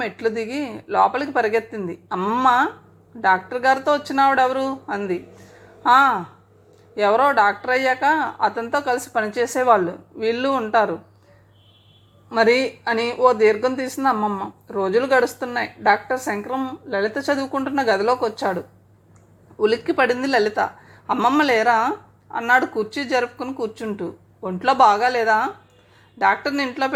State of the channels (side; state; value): both; identical; correlation 1.00